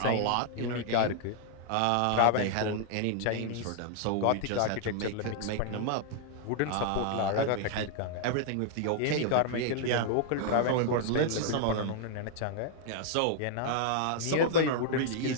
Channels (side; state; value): both; different; correlation -0.01